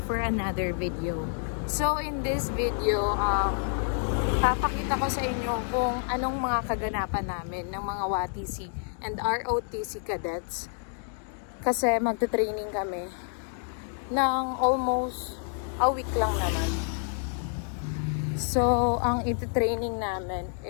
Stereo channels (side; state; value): right; silent; 59 dB below the other